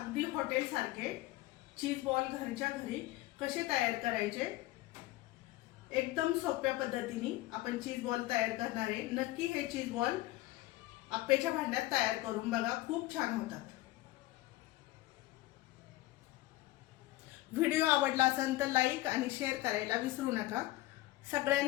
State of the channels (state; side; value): quieter; right; 17.9 dB